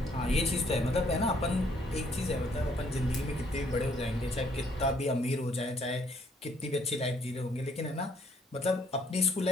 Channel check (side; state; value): both; normal; correlation 0.66